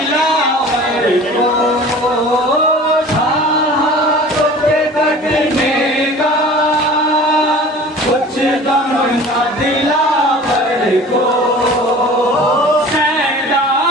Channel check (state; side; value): normal; both; correlation 0.42